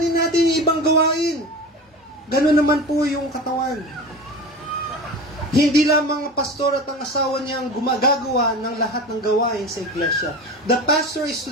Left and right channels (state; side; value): normal; both; correlation 0.31